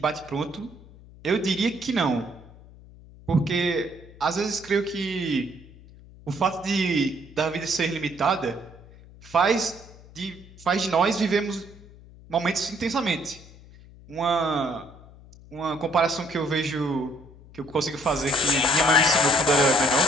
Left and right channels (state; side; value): noise; left; hum, 21 dB below the sound